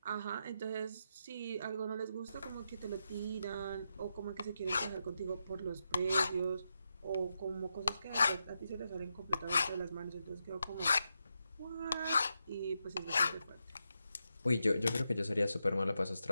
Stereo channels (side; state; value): both; inverted; correlation -0.85